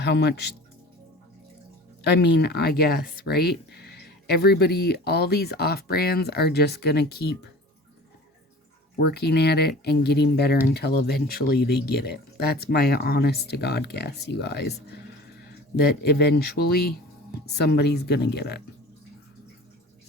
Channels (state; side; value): normal; both; correlation 0.41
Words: much, I mean, I guess, right? Everybody, all these off-brands are just going to keep working at it and getting better until eventually they get it. That's my honest to God guess, you guys. That eventually somebody's going to get it.